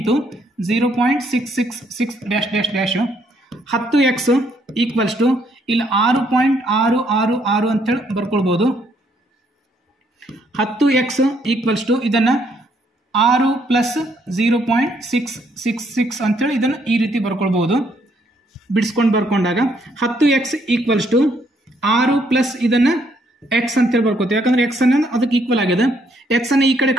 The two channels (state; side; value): normal; both; correlation 0.70